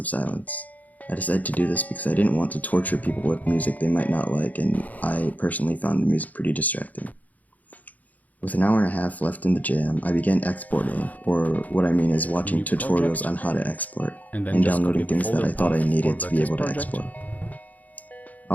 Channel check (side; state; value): right; late; 0.078 ms